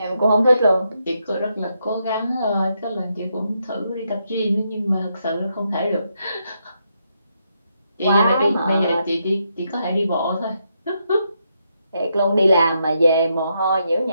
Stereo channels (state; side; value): inverted; both; correlation -0.80